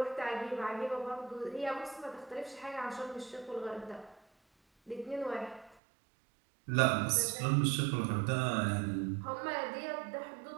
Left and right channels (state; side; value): drops out; left; at 5.8 s